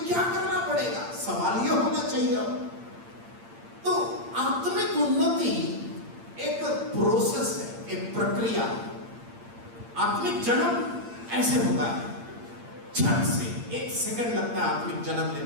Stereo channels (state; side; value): late; left; 8.7 ms